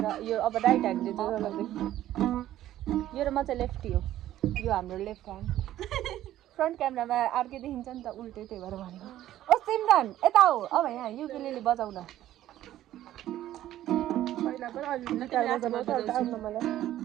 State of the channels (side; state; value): left; quieter; 13.2 dB